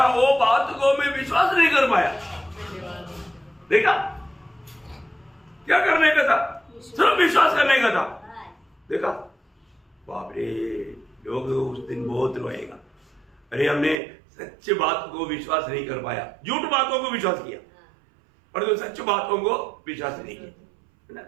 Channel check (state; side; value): drops out; left; at 14.0 s